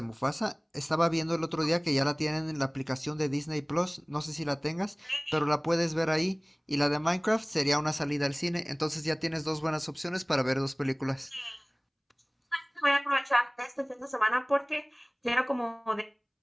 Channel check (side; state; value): both; identical; correlation 1.00